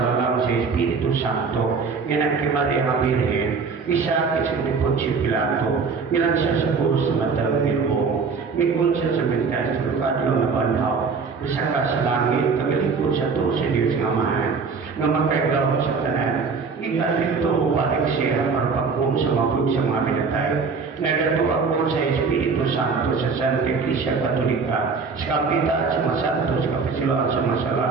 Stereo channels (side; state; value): left; quieter; 5.0 dB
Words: sa Espiritu Santo, yan kay Maria ang Birhen, isa sa Poncio Pilato, ilan siya sa puso sa matang Ginoo, mikon siya sa mentas sa lugar na banhaw, isa ka sa langit, tagalikod sa to sa Diyos ng Amahan, nga makagawa sa tanan. Ikalit ito upalik siya para pagkong sa mapud sa mga pinatay. Nagatuwa ko sa Espiritu Santo sa Santa Iglesia Katolika, sa Kapita at sa Masanto, sa Kapisiluan sa Masala,